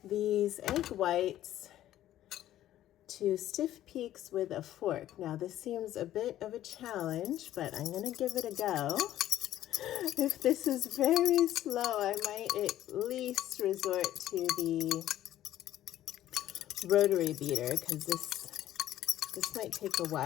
these egg whites to stiff peaks with a fork. Now this seems a bit of a challenge, but I'm gonna give it a go. If this is very slow, I might at least resort to the rotary beater because this might take a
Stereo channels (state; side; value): quieter; right; 12.9 dB